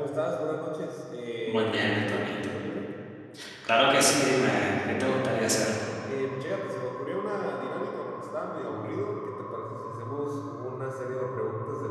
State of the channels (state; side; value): identical; both; correlation 1.00